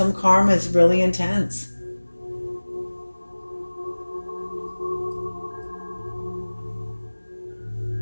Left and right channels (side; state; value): both; inverted; correlation -1.00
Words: karma is really intense.